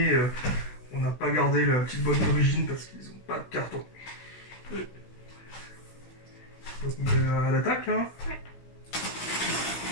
on n'a pas gardé la petite boîte d'origine parce qu'ils n'ont pas de carton. Donc on attaque hein. Ouais.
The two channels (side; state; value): right; late; 16 ms